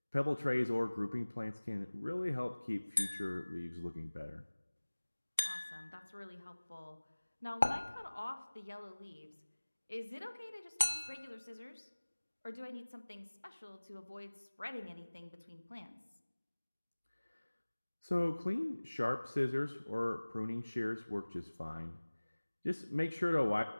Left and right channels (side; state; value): both; inverted; correlation -1.00